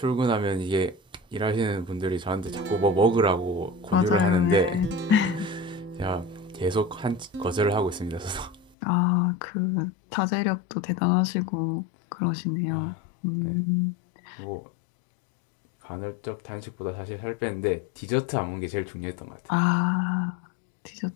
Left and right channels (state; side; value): drops out; right; at 8.7 s